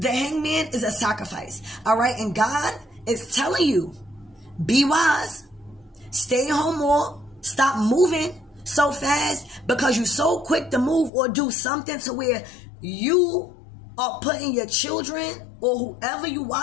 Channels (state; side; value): drops out; right; at 11.1 s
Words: Hangman is a sacrifice. All right? And God is telling you, be wise. Stay home more. Stop moving so fast because you're so quick to move or do something to where you are putting your children or whoever you